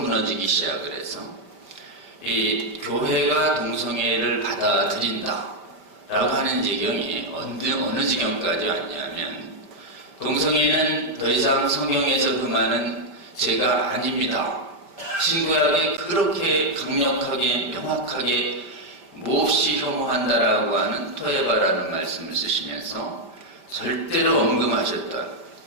시작을 해서 이 교회가 동성애를 받아들인다라고 하는 지경이 어느 지경까지 왔냐면 동성애는 더 이상 성경에서 금하는 죄가 아닙니다. 신구약에 그렇게 강력하게 명확하게 몹시 혐오한다라고 하는 토에바라는 말씀을 쓰시면서 절대로 언급하셨던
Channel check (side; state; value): left; late; 5.1 ms